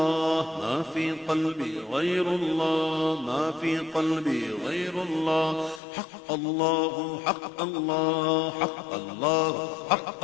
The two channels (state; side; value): drops out; right; at 5.8 s